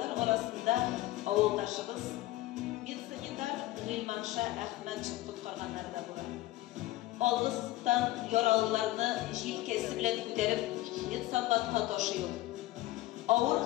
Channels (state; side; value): quieter; right; 16.8 dB